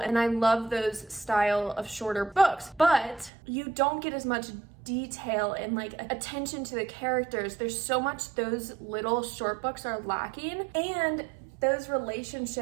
I love those style of shorter books, but you don't get as much detail and like attention to the characters. There's so much those little short books are lacking, and those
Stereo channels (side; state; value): left; drops out; at 3.3 s